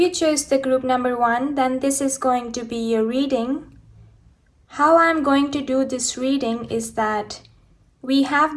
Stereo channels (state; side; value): identical; both; correlation 1.00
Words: choose the group number 1, then this is going to be your reading. How I'm going to do this reading is that we